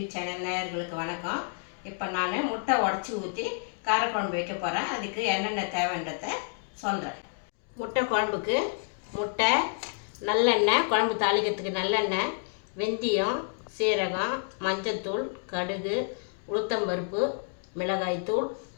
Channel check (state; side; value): silent; right; 58 dB below the other